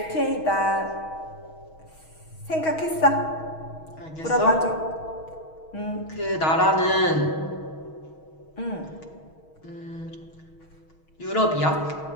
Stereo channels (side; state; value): right; late; 6.3 ms